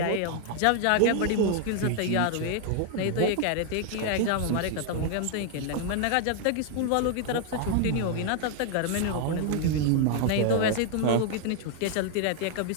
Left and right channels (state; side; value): different; both; correlation 0.00